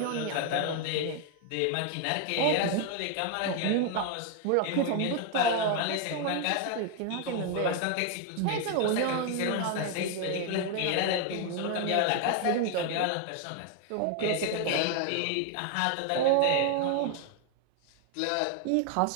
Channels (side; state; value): both; different; correlation 0.01